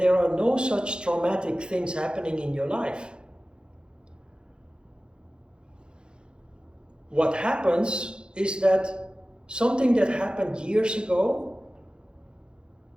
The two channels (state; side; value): late; left; 0.050 ms